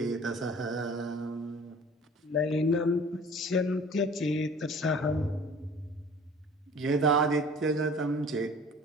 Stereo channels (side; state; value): both; normal; correlation 0.47